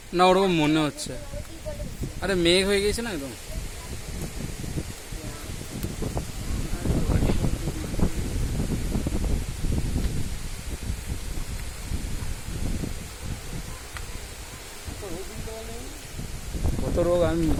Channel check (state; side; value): identical; both; correlation 1.00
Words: না ওরকম মনে হচ্ছে। আরে মেঘ হয়ে গেছে না একদম। কত রোগ, আমি